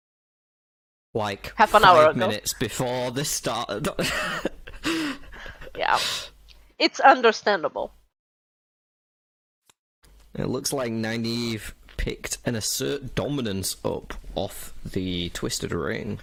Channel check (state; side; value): identical; both; correlation 1.00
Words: like half an hour ago, 5 minutes before this started. Yeah, it's understandable. It looks like Nynaeve picked an Assert Dominance up off the Twisted Ring.